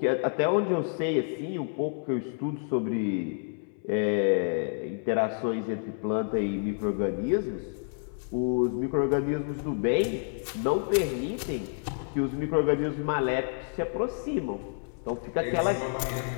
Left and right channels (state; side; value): silent; right; 59 dB below the other